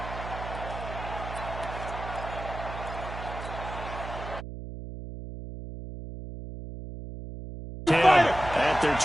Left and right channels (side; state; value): right; noise; hum, 9 dB below the sound